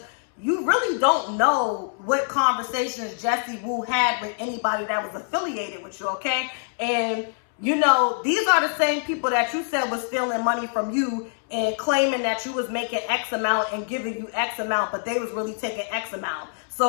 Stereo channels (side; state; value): right; silent; 62 dB below the other